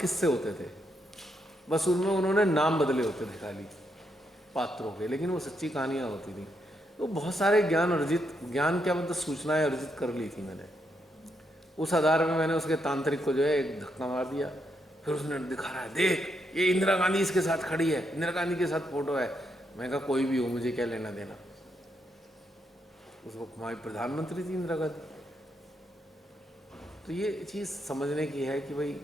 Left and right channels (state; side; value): normal; both; correlation 0.79